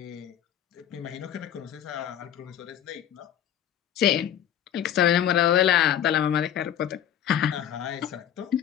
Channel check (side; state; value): right; quieter; 10.4 dB